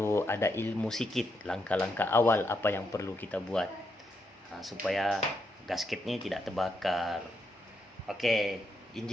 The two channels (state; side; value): normal; both; correlation 0.80